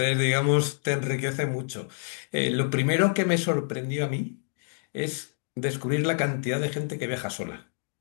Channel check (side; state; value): right; silent; digital silence